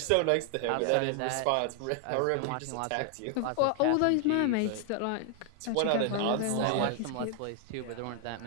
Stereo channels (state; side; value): different; both; correlation 0.00